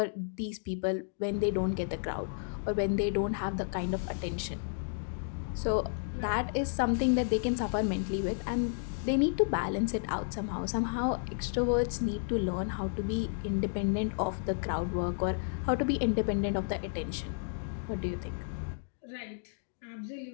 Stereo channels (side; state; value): right; silent; digital silence